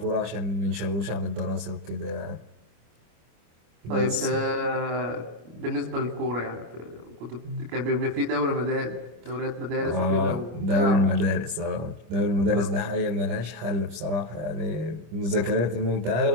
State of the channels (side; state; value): left; late; 25 ms